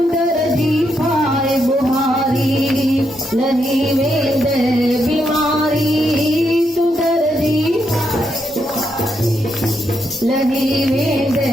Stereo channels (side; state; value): both; normal; correlation 0.80